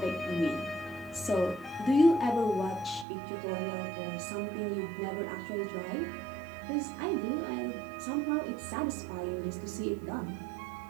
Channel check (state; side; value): drops out; left; at 3.1 s